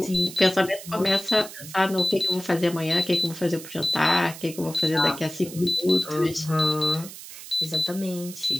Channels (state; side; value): noise; right; hiss, 14 dB below the sound